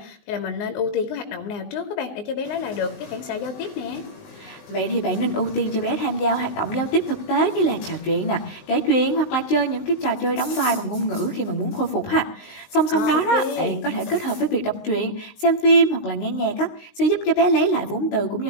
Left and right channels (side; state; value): right; late; 19 ms